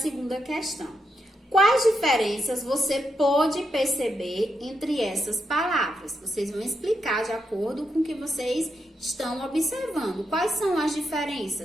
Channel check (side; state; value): both; normal; correlation 0.82